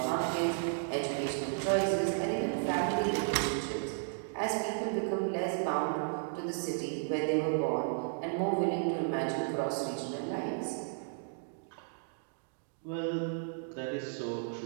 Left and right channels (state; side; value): silent; left; digital silence